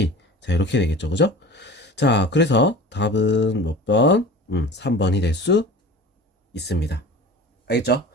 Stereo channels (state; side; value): normal; both; correlation 0.38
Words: 자, 이렇게 되겠죠. 그죠? 자, 그래서 답은 몇 번? 3번이 될 수 있습니다. 알겠죠?